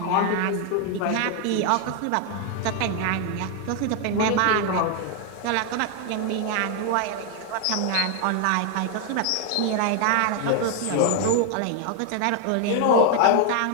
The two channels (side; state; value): both; different; correlation 0.00